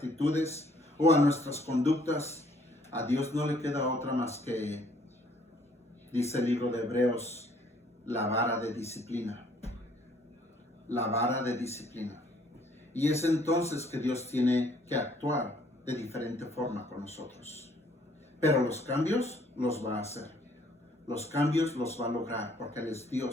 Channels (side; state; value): both; normal; correlation 0.62